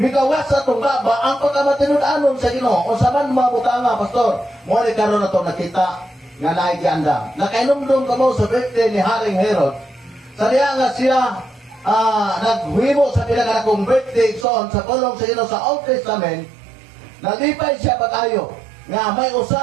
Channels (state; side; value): drops out; left; at 14.5 s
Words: nigawas sa atong baba, ang pagkamatinud-anon sa Ginoo. O sa man mga butanga, Pastor, mo ni karon nato nakita nga naigiandam. Nakainumdum ka mo sa birthday ni Haring Herod. Sa diya nga siya naghuhimo sa pinagkanakong birthday son sa pulong sa Ginoo sa Old Testament, nalipay siya pag-ayo nga may